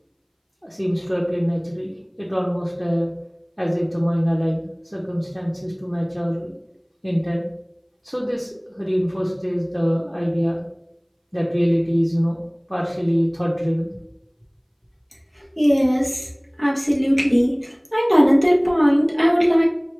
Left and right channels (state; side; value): identical; both; correlation 1.00